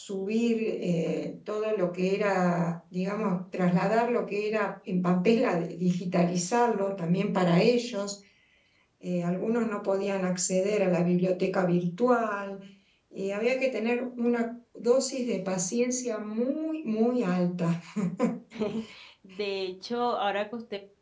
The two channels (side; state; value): both; identical; correlation 1.00